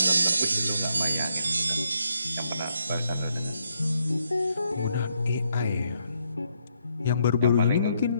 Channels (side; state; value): both; inverted; correlation -0.76